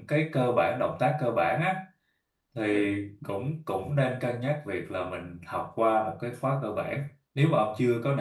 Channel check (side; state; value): both; identical; correlation 1.00